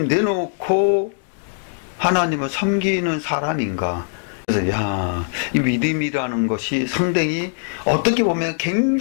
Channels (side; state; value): right; silent; 65 dB below the other